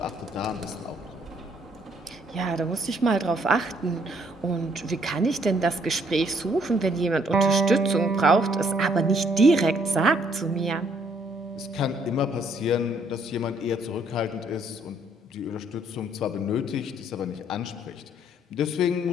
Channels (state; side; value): normal; both; correlation 0.67